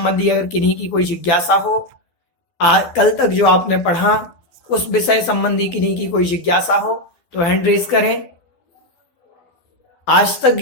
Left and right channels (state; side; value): late; right; 12 ms